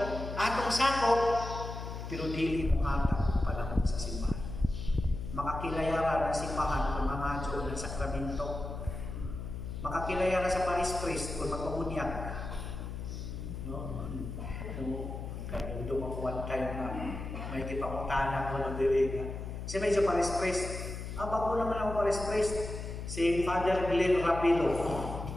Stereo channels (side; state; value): left; noise; hum, 7 dB below the sound